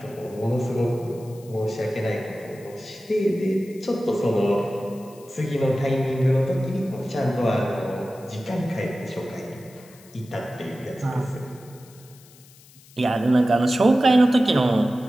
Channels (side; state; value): left; noise; hiss, 25 dB below the sound